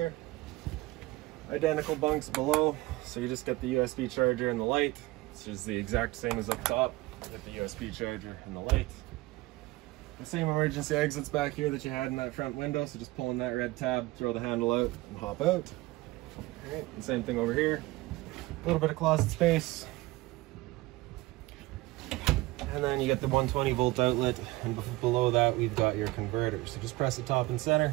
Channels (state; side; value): quieter; left; 20.1 dB